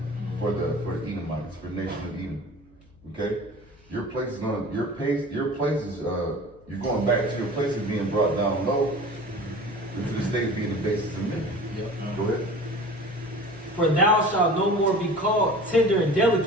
for the Edomites, for the nation of Edom. Okay, your place is you're going back to your place of being brought down low into the state of being the basis of men. Go ahead. For thou shalt no more be called tender and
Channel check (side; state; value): left; noise; hum, 28 dB below the sound